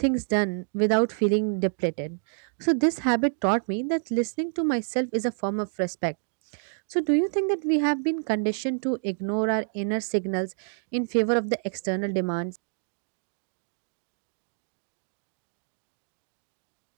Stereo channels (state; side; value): silent; left; digital silence